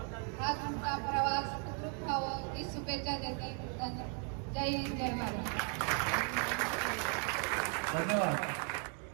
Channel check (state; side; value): quieter; left; 40.0 dB